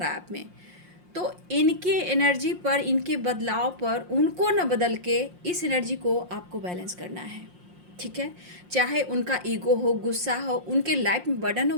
है आप में, तो इनके एनर्जी पर, इनके बदलाव पर उनको न बदल के इस एनर्जी को आपको बैलेंस करना है, ठीक है। चाहे उनका ईगो हो, गुस्सा हो, उनके लाइफ में बर्डन हो,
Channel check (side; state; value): left; late; 5.6 ms